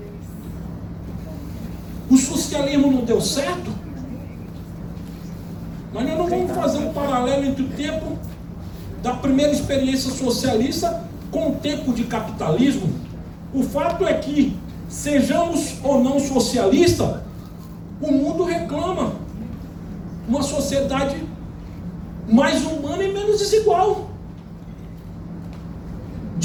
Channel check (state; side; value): identical; both; correlation 1.00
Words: O socialismo não deu certo, mas nós não vamos fazer um paralelo entre o tempo da primeira experiência socialista com o tempo de capitalismo. O fato é que, sejamos ou não socialistas, o mundo reclama uma sociedade mais humana e menos desigual.